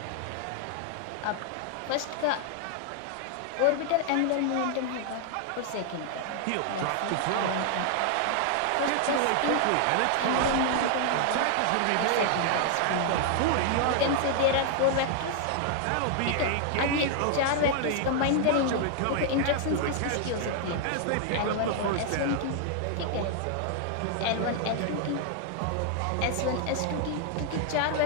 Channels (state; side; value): different; both; correlation 0.00